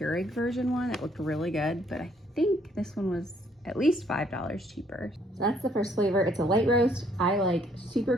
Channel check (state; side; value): normal; both; correlation 0.66